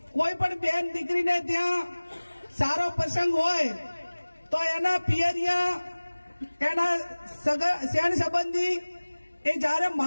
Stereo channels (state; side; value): inverted; both; correlation -1.00